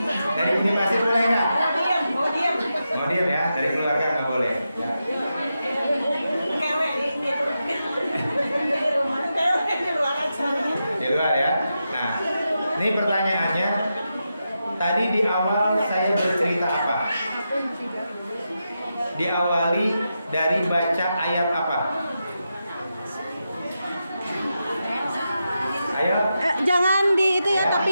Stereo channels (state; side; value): inverted; both; correlation -0.88